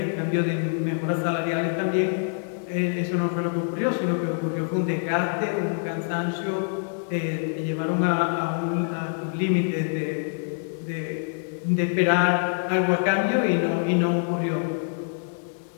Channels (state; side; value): silent; right; digital silence